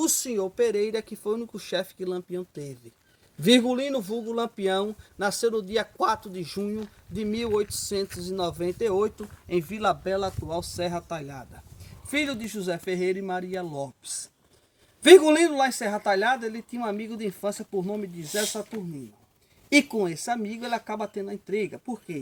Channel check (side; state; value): both; identical; correlation 1.00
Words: senhor Pereira, que foi o único chefe que Lampião teve. Virgulino vulgo Lampião nasceu no dia 4 de junho de 1898, em Vila Bela, atual Serra Talhada. Filho de José Ferreira e Maria Lopes. Virgulino, lá em Serra Talhada, ele tinha um amigo de infância por nome de Zé Saturnino. E com esse amigo ele acaba tendo a intriga. Por